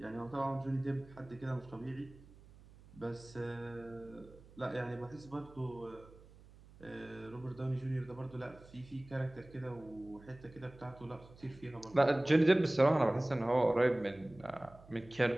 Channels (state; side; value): noise; right; hum, 22 dB below the sound